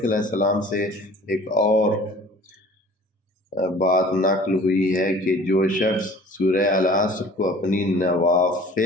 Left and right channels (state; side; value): normal; both; correlation 0.47